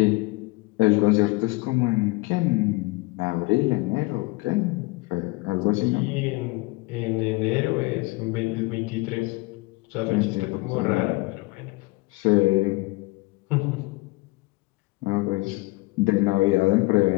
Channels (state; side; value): quieter; right; 23.7 dB